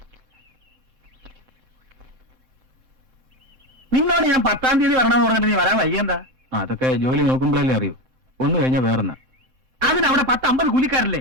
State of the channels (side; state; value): left; late; 3.7 ms